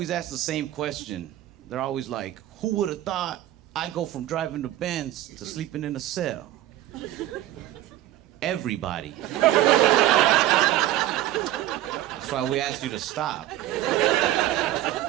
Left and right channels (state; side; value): quieter; left; 14.1 dB